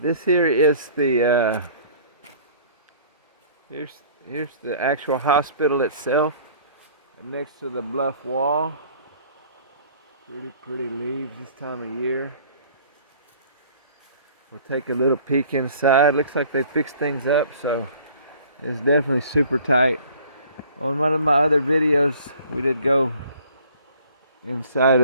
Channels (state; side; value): inverted; both; correlation -0.51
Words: here is the here's the actual hospital itself, next to the bluff wall. Pretty leaves this time of year. We'll take a little peek inside. Looks like they fixed things up, so it's definitely super tight. On one of my other videos, we did go inside